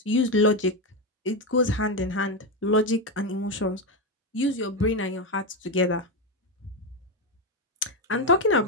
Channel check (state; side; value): normal; both; correlation 0.09